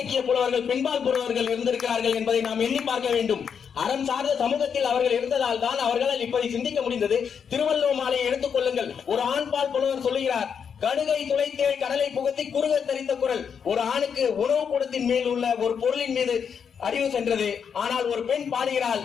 புலவர்கள், பெண்பால் புலவர்கள் இருந்திருக்கிறார்கள் என்பதை நாம் எண்ணி பார்க்க வேண்டும். அறம் சார்ந்த சமூகத்தில் அவர்கள் இருந்ததால் தான் அவர்களால் இப்படி சிந்திக்க முடிந்தது. திருவள்ளுவர் மாலையை எடுத்துக் கொள்ளுங்கள். ஒரு ஆண்பால் புலவர் சொல்லுகிறார், கடுகை துளைத்தேள் கடலை புகுத்தி குறுக தரித்த குரல். ஒரு ஆணுக்கு உணவு கூடத்தின் மேல் உள்ள ஒரு பொருளின் மீது அறிவு சென்றது. ஆனால் ஒரு பெண் பாடுகிறாள்,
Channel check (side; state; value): right; quieter; 7.1 dB